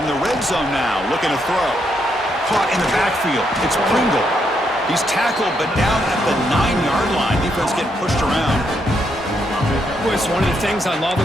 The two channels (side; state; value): both; normal; correlation 0.77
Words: the red zone now, looking to throw. Caught in the backfield. It's Pringle. He's tackled, but down at the 9-yard line. Defense getting pushed around. It's one of the things I love